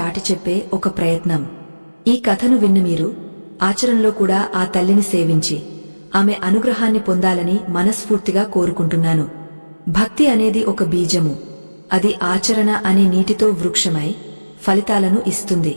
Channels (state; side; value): inverted; both; correlation -1.00